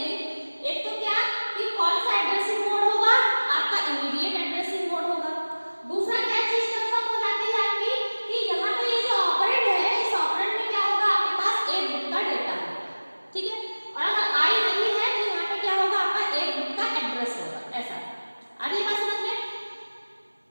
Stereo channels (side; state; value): both; inverted; correlation -1.00